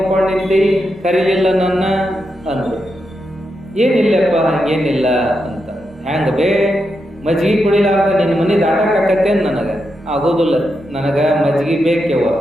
ನಿಂತಿ, ಕರೀಲಿಲ್ಲ ನನ್ನ ಅಂದ್ರು. ಏನಿಲ್ಲಪ್ಪ ಹಂಗೇನಿಲ್ಲ ಅಂತ. ಹ್ಯಾಂಗ ಬೇ ಮಜ್ಗಿ ಕುಡಿಲಾರ್ದ ನಿನ್ನ ಮನೆ ದಾಟಕ್ಕಾಕತ್ತೇನು? ನನಗೆ ಆಗೋದಿಲ್ಲ, ನನಗೆ ಮಜ್ಗಿ ಬೇಕ್ಯವ,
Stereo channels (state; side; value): normal; both; correlation 0.85